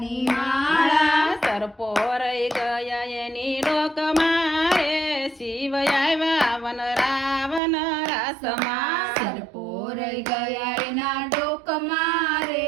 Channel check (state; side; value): drops out; left; at 7.6 s